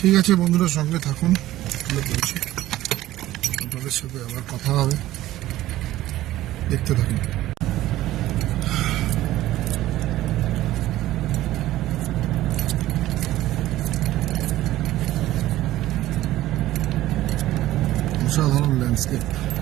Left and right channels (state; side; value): quieter; left; 15.2 dB